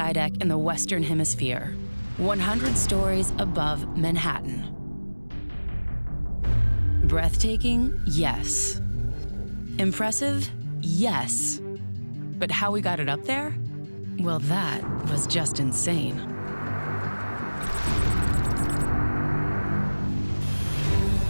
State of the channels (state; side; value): inverted; both; correlation -1.00